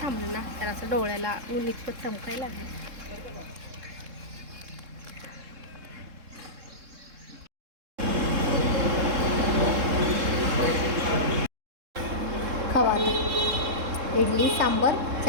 थांबलं ना तर असं डोळ्याला ऊन इतकं चमकायला लागलं. खवा इडली सांबर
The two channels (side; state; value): left; late; 3.7 ms